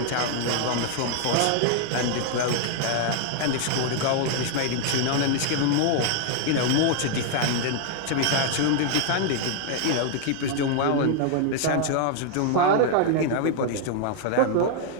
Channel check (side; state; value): both; different; correlation 0.00